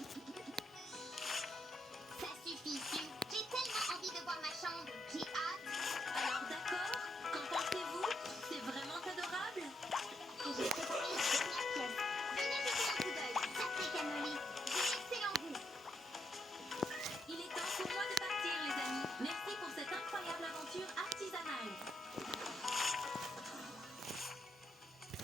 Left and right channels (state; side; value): normal; both; correlation 0.79